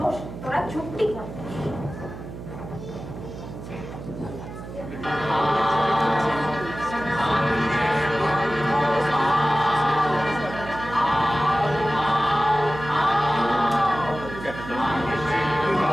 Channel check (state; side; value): noise; right; hum, 11 dB below the sound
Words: তোরা চুপটি কর।